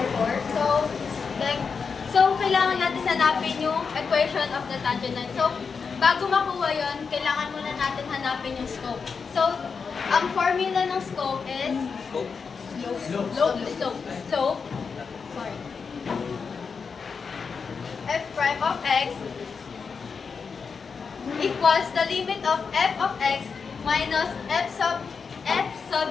4. So, kailangan natin hanapin yung equation of the tangent line. So, bago makuha yon, kailangan muna natin hanapin yung slope. So, ang formula ng slope is slope. Sorry. F prime of x equals the limit of f of x minus f of x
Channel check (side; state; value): right; quieter; 5.5 dB